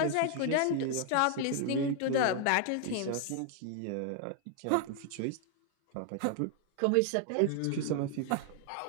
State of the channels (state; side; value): different; both; correlation 0.00